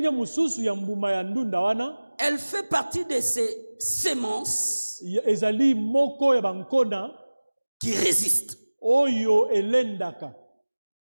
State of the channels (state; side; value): inverted; both; correlation -1.00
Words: mususu ya mbuma ya ndunda wana, elle fait partie de ces semences ezali moko ya bankona qui résistent. Oyo elendaka.